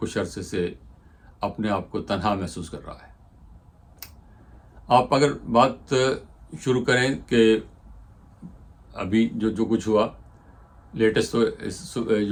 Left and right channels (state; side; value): identical; both; correlation 1.00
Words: عرصے سے اپنے آپ کو تنہا محسوس کر رہا ہے؟ آپ اگر بات شروع کریں کہ ابھی جو کچھ ہوا لیٹسٹ،